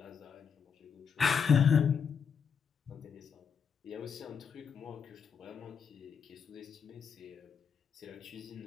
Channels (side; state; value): right; quieter; 6.7 dB